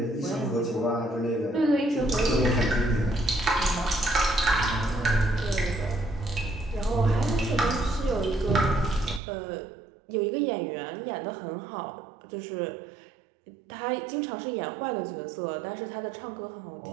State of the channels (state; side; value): drops out; left; at 9.2 s